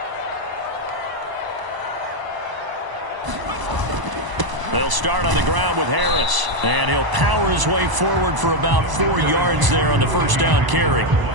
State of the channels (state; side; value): late; left; 1.0 ms